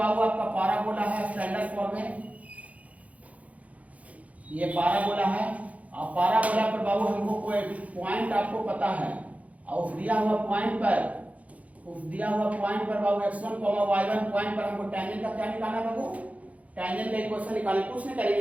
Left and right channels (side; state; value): left; late; 0.068 ms